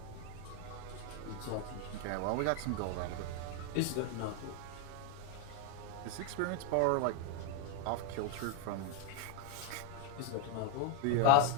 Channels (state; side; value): different; both; correlation 0.01